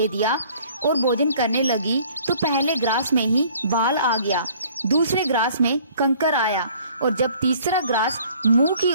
दिया और भोजन करने लगी तो पहले ग्रास में ही बाल आ गया, दूसरे ग्रास में कंकर आया और जब तीसरा ग्रास मुंह की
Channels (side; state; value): both; inverted; correlation -0.55